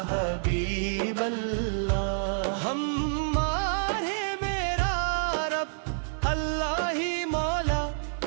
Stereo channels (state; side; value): silent; left; digital silence